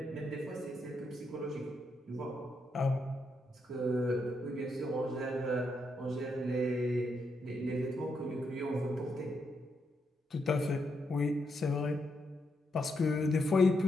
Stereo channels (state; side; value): normal; both; correlation 0.80